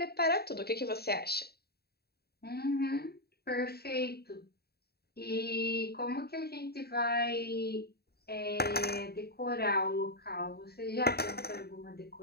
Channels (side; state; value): right; late; 0.46 ms